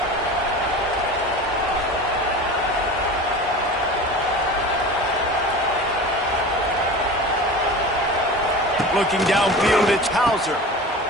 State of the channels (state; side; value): normal; both; correlation 0.34